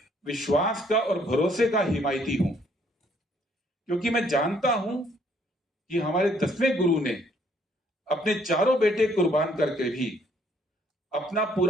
विश्वास का और भरोसे का हिमायती हूं, क्योंकि मैं जानता हूं कि हमारे 10वें गुरु ने अपने चारों बेटे कुर्बान करके भी, अपना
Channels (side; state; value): both; normal; correlation 0.65